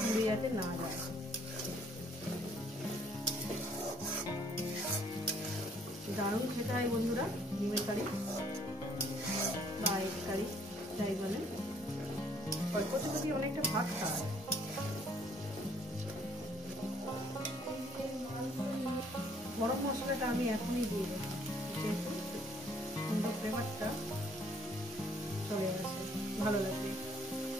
পুড়ে যাতে না যায়। দারুণ খেতে হয় বন্ধুরা ডিমের কারি বা এগ কারি যাই বলেন। অল্প যদি অনেকটা ভাত খাওয়া। গরম মশলাটা আমি এখনই দিয়ে দেবো, যেহেতু সুন্দর ফ্লেভারটা চলে আসে, ভালো লাগবে।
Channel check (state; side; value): normal; both; correlation 0.63